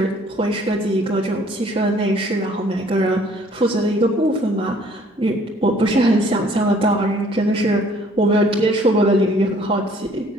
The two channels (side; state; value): both; normal; correlation 0.58